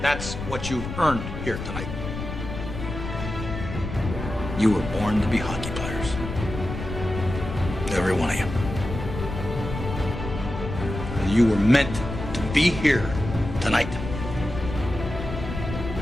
That's what you've earned here tonight. You were born to be hockey players. Every one of you. You were meant to be here tonight.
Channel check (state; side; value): noise; left; rumble, 7 dB below the sound